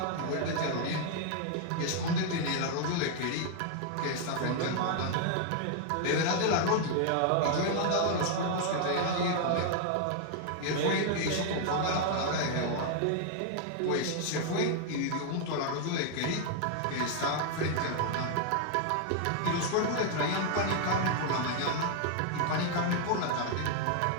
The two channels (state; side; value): different; both; correlation 0.00